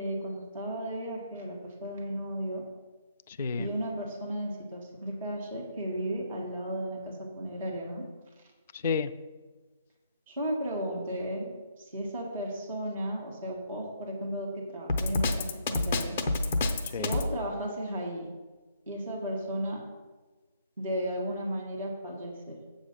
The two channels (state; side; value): inverted; both; correlation -0.71